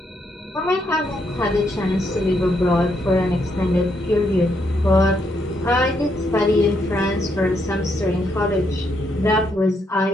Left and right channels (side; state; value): both; normal; correlation 0.76